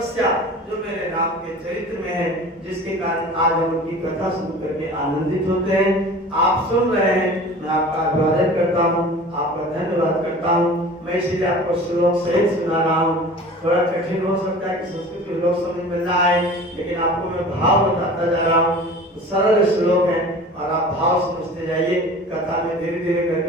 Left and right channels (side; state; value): both; normal; correlation 0.40